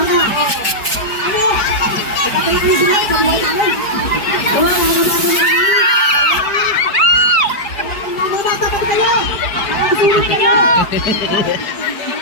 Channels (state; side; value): late; right; 4.7 ms